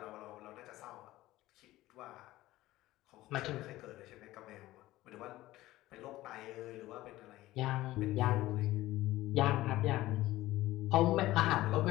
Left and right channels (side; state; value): right; quieter; 16.7 dB